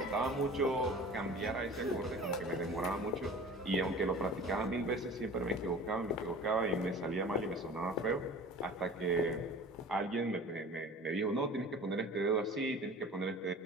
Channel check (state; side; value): normal; both; correlation 0.41